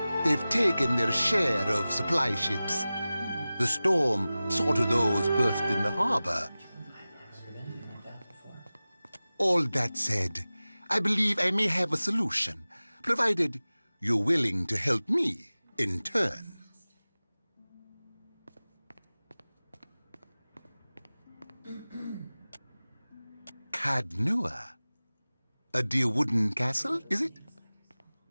They've taken their share of supply ships. The storm saw to those berthed in the harbor. All that said, I believe I may have a solution, provided you're willing to help me in turn. Cadnua? A dear wooden castle, is it?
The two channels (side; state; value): both; inverted; correlation -0.97